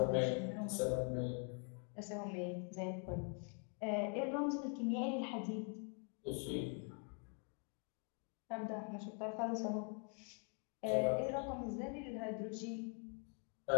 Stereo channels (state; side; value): quieter; right; 39.2 dB